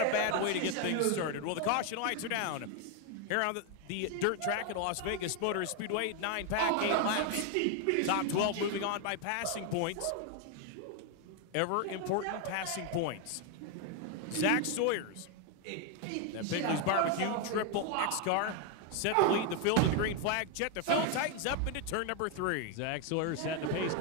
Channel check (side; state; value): both; different; correlation 0.01